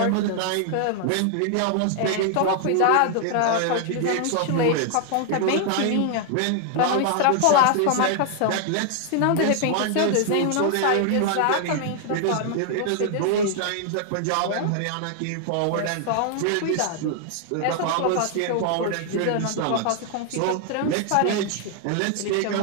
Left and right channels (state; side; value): different; both; correlation 0.00